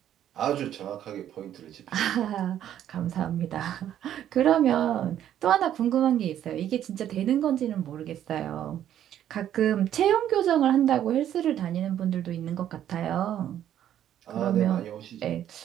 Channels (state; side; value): quieter; left; 10.9 dB